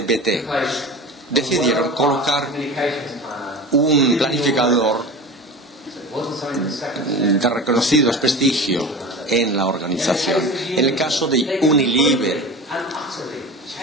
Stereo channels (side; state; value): both; normal; correlation 0.32